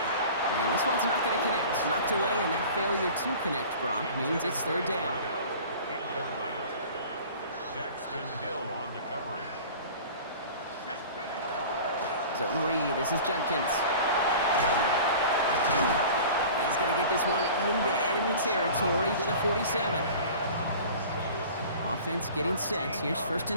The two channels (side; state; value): both; inverted; correlation -0.41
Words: And this one's not going to connect. Knocked away, and that failure to connect, Brock, means it's 3rd down. Hill on the coverage. Zone read. This is Junkins. He's going to get this one into enemy territory to the 47. Offense getting set. Here's 1st